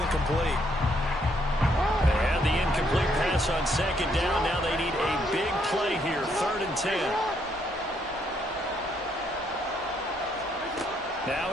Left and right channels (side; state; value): both; normal; correlation 0.72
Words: And the incomplete pass on 2nd down. Now they need a big play here, 3rd and 10.